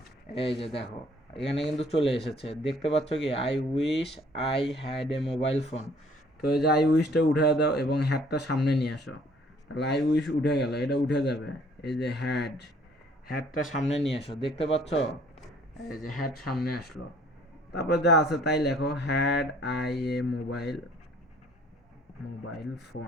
এই যে দেখো, এখানে কিন্তু চলে এসেছে, দেখতে পাচ্ছ কি? I wish I had a mobile phone. তো এই যে আই উইশটা উঠে দাও এবং হ্যাডটা সামনে নিয়ে আসো, তাহলে আই উইশ উঠে গেল, এটা উঠে যাবে। এই যে হ্যাডটা সামনে নিয়ে আসো, দেখতে পাচ্ছ? এই যে হ্যাড সামনে আসলো, তারপর যা আছে তাই লেখো, had I A mobile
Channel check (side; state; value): both; normal; correlation 0.58